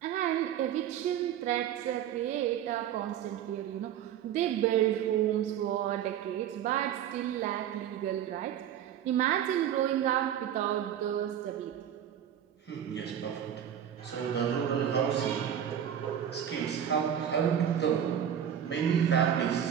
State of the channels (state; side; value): quieter; left; 9.8 dB